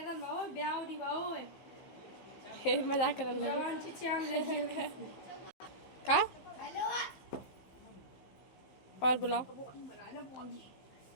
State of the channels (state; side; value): late; right; 15 ms